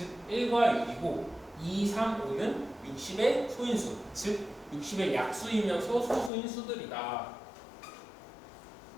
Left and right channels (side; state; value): right; drops out; at 6.3 s